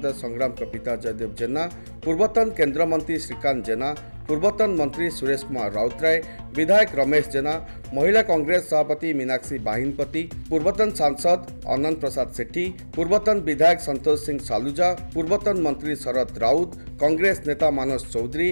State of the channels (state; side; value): inverted; both; correlation -1.00